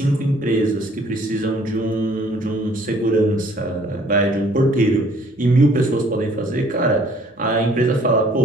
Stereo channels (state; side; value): normal; both; correlation 0.58